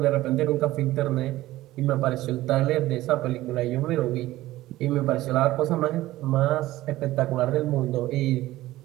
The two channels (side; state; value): left; quieter; 16.4 dB